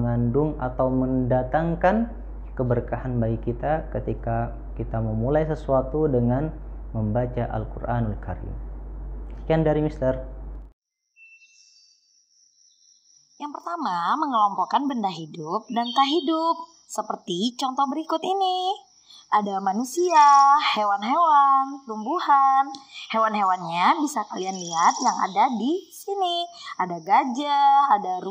atau mendatangkan keberkahan bagi kita ketika kita memulai sesuatu dengan membaca Al-Quranul Karim. Sekian dari Mister. Yang pertama, mengelompokkan benda hidup dan tak hidup. Seperti contoh berikut ini. Ada manusia, hewan-hewan, tumbuhan. Hewan-hewannya bisa kalian lihat yang ada di sini. Ada gajah, ada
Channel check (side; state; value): both; identical; correlation 1.00